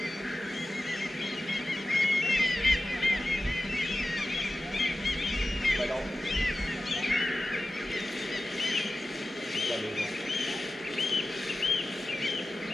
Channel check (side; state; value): both; normal; correlation 0.94